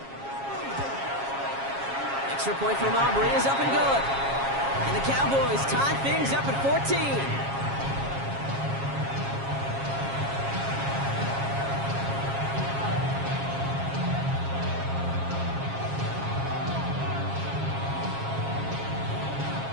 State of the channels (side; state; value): left; late; 7.3 ms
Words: Extra point from Aubrey is up and good. And the Cowboys tie things up at 14.